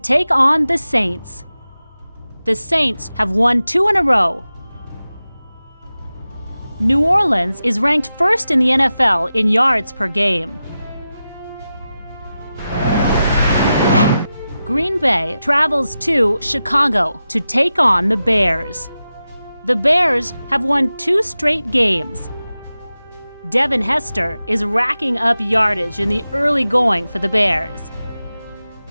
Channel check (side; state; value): both; inverted; correlation -0.93